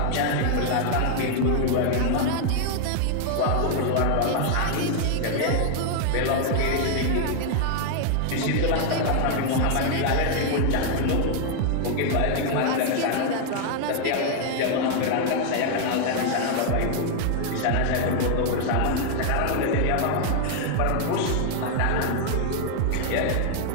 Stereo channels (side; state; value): both; different; correlation 0.00